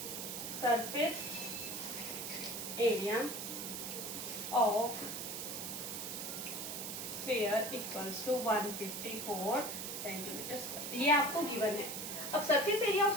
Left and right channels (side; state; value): right; noise; hiss, 5 dB below the sound